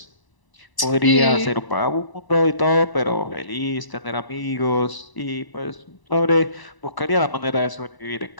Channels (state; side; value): late; right; 1.0 ms